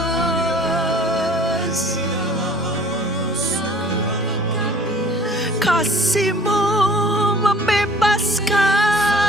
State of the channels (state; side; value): normal; both; correlation 0.50